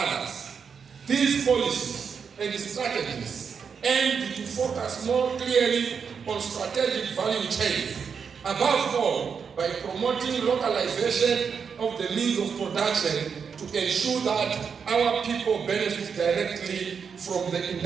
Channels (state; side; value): quieter; left; 6.3 dB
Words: These policies and strategies aim to focus more clearly on strategic value chains, above all by promoting localization of the means of production to ensure that our people benefit directly from the